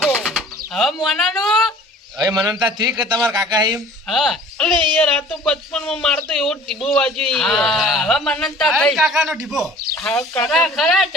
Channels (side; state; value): both; normal; correlation 0.48